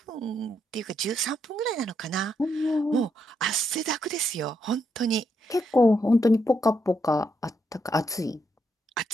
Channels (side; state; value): both; normal; correlation 0.79